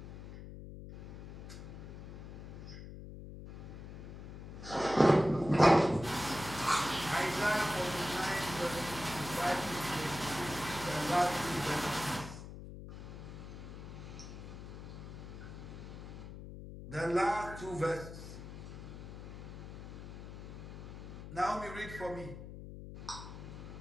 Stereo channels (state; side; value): noise; left; hum, 11 dB below the sound